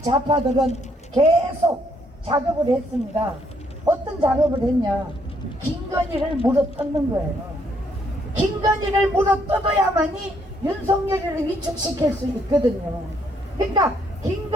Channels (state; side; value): normal; both; correlation 0.70